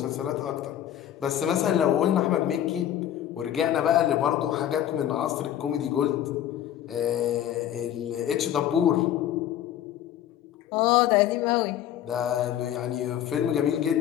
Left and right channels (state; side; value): quieter; right; 11.1 dB